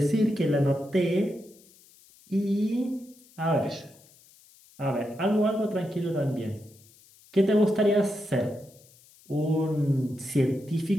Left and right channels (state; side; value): noise; left; hiss, 27 dB below the sound